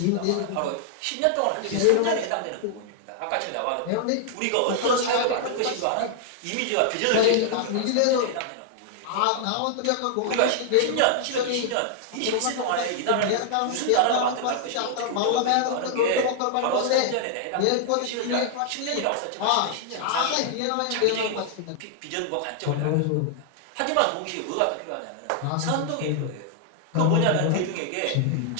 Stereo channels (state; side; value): different; both; correlation 0.00